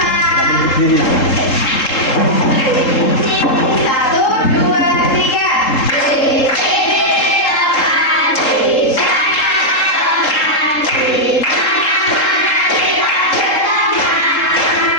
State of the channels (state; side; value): late; right; 3.7 ms